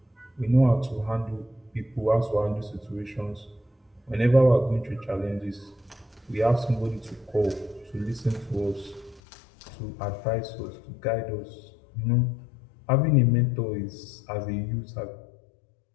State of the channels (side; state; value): right; drops out; at 9.2 s